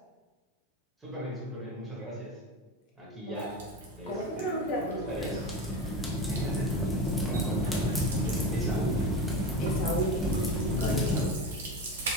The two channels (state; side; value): normal; both; correlation 0.23